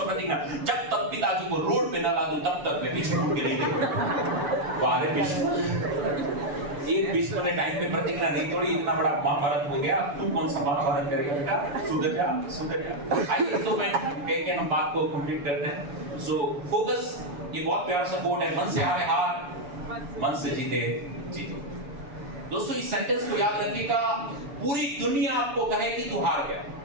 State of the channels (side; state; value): left; late; 7.0 ms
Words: प्रतिज्ञा, जब तक पिताजी को रोड पे ना ला दूं तब तक मैं भीष्म के नहीं देखूंगा। वाह रे भीष्म, एक भीष्म ने टाइम पे प्रतिज्ञा नहीं तोड़ी, इतना बड़ा महाभारत हो गया, तू कौन सा महाभारत करेगा बेटा? सुधर जा। आइए तो मैं कह के हम बात को कंप्लीट करते हैं। सो फोकस, ये बहुत प्यारा सा कोट है, मन से हारे हार, मन से जीते जीतो। दोस्तों इस सेंटेंस को याद रखिएगा, पूरी दुनिया आपको कहे कि तू हार गया,